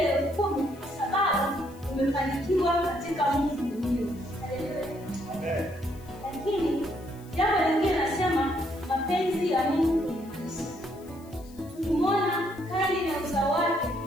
10 kwa sababu umefanikiwa katika Mungu mwenyewe. Haleluya. Lakini jambo lingine nasema mapenzi ya Mungu kwenye maisha. Tukimwona Kaini na uzao wake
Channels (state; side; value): noise; left; hiss, 25 dB below the sound